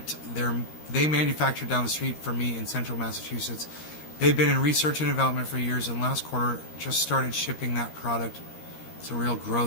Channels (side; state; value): right; late; 13 ms